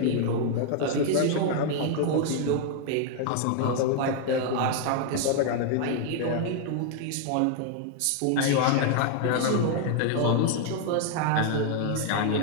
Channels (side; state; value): both; different; correlation 0.00